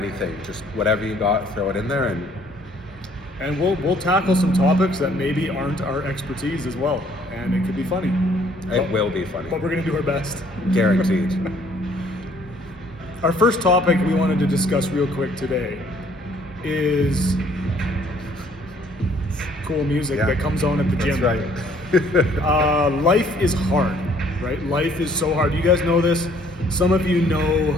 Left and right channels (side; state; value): both; normal; correlation 0.61